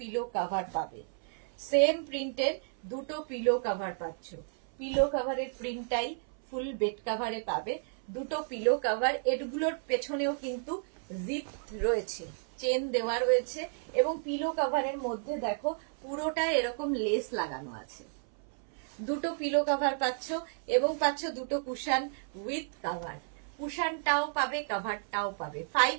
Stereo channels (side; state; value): left; silent; 56 dB below the other